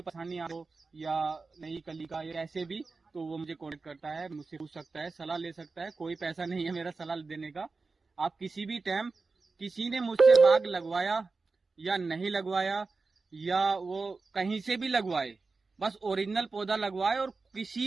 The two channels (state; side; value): quieter; left; 4.1 dB